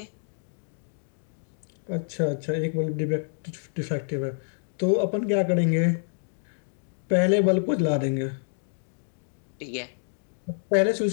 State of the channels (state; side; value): silent; right; digital silence